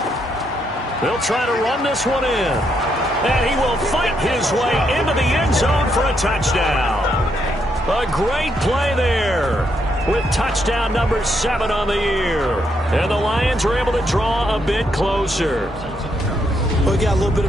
They'll try to run this one in. And he will fight his way into the end zone for a touchdown. A great play there with touchdown number 7 on the year. And the Lions are able to draw a bit closer. We got a little bit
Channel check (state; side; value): normal; both; correlation 0.77